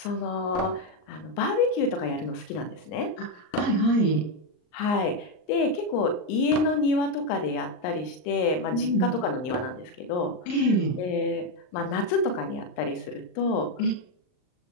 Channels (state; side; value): late; right; 39 ms